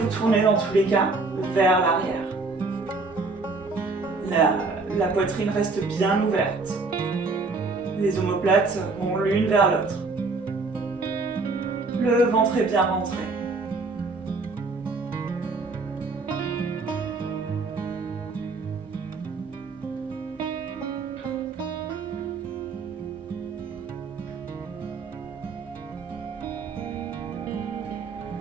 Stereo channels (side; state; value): left; quieter; 3.8 dB